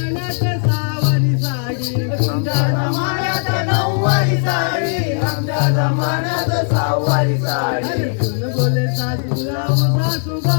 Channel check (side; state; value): right; silent; 60 dB below the other